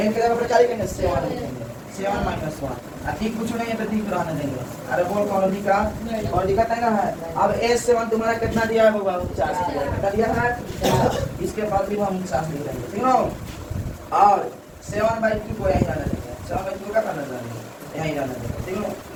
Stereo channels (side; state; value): both; identical; correlation 1.00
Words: के जगह पर क्या लिखेंगे? 7 लिखेंगे। 7-1 ठीक कुछ नहीं है तो ठीक रहने देंगे। अरे बोल कौन दिखा? और दिखता है ना? अब S7 तुम्हारा कितना दिया है बाबा? 50 दिया है। कितना दिया है? इसके बाद भी हम 50 लिख देंगे, ठीक है? और 7/2 को यहीं रहने देंगे। 7/2 का करना देंगे, यहीं रहने देंगे, ठीक है?